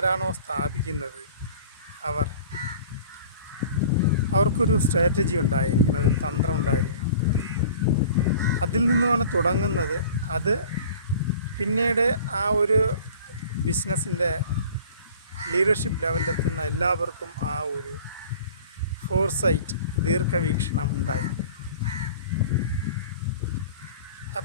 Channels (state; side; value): inverted; both; correlation -0.45